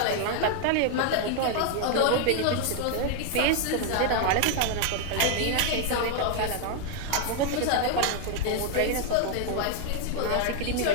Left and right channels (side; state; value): both; different; correlation 0.00